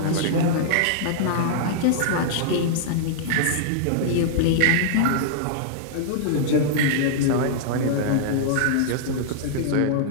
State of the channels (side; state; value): both; different; correlation -0.02